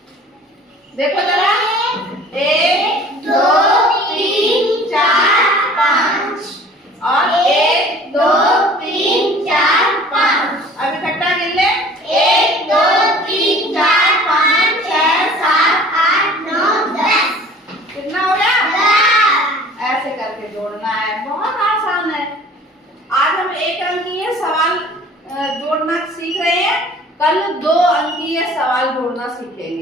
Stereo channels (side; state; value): both; normal; correlation 0.48